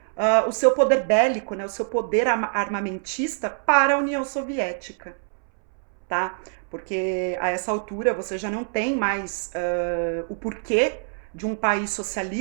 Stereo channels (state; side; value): silent; left; 62 dB below the other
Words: o seu poder bélico, né, o seu poder armamentista para a União Soviética, tá? Porque a essa altura você já não tem mais o porquê de um país